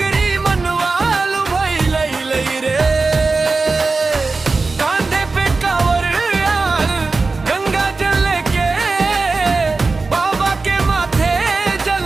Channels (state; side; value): quieter; left; 3.9 dB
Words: मनवालु भइले रे। कांधे पे कांवर यार गंगा जल लेके बाबा के माथे